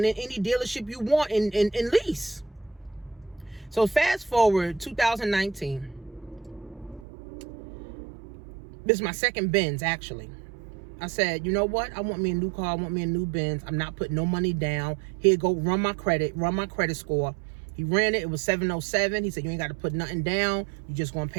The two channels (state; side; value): drops out; left; at 7.1 s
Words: any dealership you want and lease. So fast forward 2019. This is my second Benz, actually. I said, you know what? I want me a new car. I want me a new Benz. I'm not putting no money down. Here, go run my credit score. He ran it. It was 707. He said, you ain't got to put nothing down. You just going to